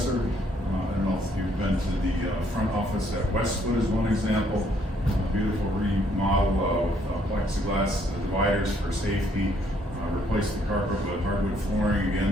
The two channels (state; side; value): normal; both; correlation 0.67